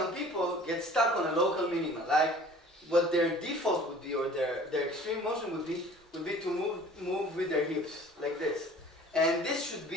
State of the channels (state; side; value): normal; both; correlation 0.48